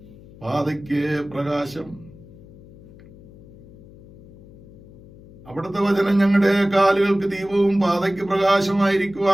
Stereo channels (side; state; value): left; noise; hum, 21 dB below the sound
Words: പാതയ്ക്ക് പ്രകാശം. അവിടുത്തെ വചനം ഞങ്ങളുടെ കാലുകൾക്ക് ദീപവും പാതയ്ക്ക്